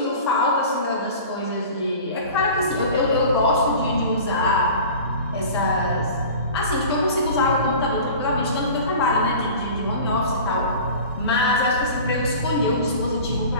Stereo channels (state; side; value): inverted; both; correlation -0.39